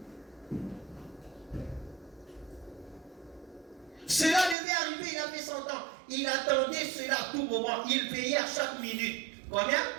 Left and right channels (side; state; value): left; drops out; at 4.5 s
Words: Cela devait arriver, il avait 100 ans. Il attendait cela à tout moment. Il payait à chaque minute. Combien?